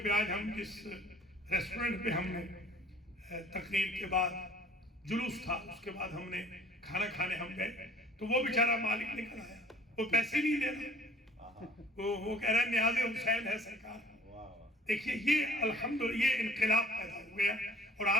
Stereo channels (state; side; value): normal; both; correlation 0.52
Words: پہ آج ہم جس ریسٹورنٹ پہ ہم نے تقریر کے بعد جلوس تھا، اس کے بعد ہم نے کھانا کھانے ہم گئے، تو وہ بیچارہ مالک نکل آیا، وہ پیسے نہیں دے رہا، وہ کہہ رہا ہے نیاز حسین ہے سرکار. دیکھیے یہ الحمدللہ یہ انقلاب پیدا ہو گیا، اور